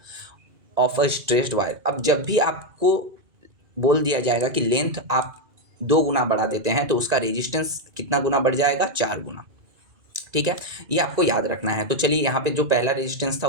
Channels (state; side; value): late; left; 1.9 ms